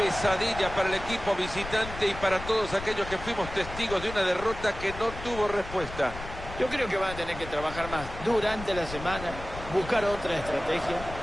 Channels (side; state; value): left; noise; rumble, 11 dB below the sound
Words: para el equipo visitante y para todos aquellos que fuimos testigos de una derrota que no tuvo respuesta. Yo creo que van a tener que trabajar más durante la semana, buscar otra estrategia,